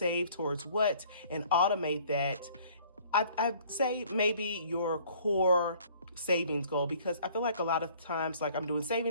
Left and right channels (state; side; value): inverted; both; correlation -0.56